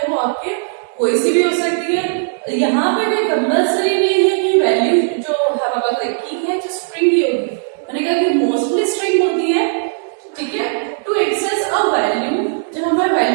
वो आपके कोई सी भी हो सकती है। यहाँ पे कोई कंपल्सरी नहीं है कि वैल्यू जो हमारे पास की है जो स्ट्रिंग ही होगी, मैंने कहा कि मोस्टली स्ट्रिंग होती है। ठीक है, टू एक्सेस अ वैल्यू, जब हमें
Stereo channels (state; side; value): silent; left; digital silence